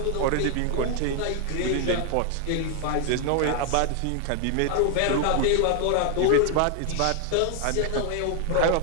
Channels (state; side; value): different; both; correlation 0.00